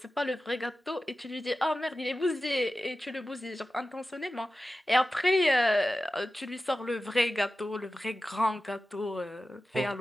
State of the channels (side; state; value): both; normal; correlation 0.94